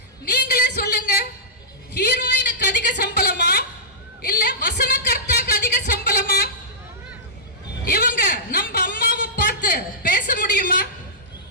நீங்களே சொல்லுங்க, ஹீரோயினுக்கு அதிக சம்பளமா இல்ல வசனகர்த்தாக்கு அதிக சம்பளமா? இவங்க நம்ம அம்மாவை பார்த்து பேச முடியுமா?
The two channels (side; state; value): both; normal; correlation -0.15